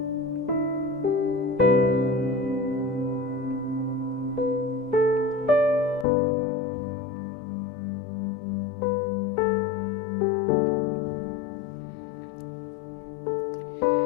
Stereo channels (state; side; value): drops out; right; at 6.1 s